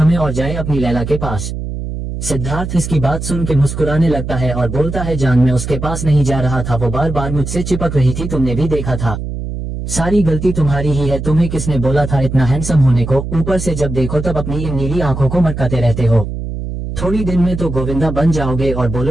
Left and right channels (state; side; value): noise; right; hum, 6 dB below the sound